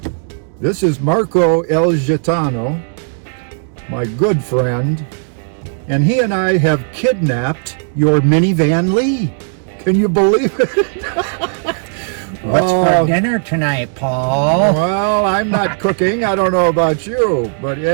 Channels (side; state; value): left; silent; digital silence